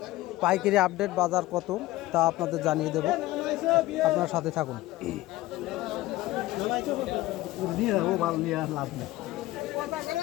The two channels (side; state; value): right; quieter; 17.5 dB